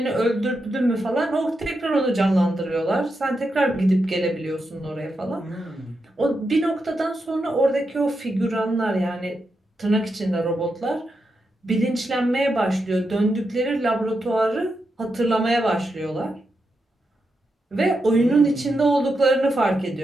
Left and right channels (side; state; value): both; normal; correlation 0.86